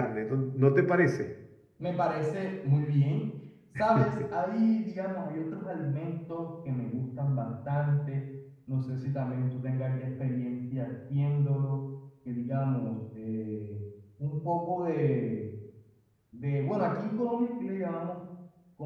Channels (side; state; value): both; identical; correlation 1.00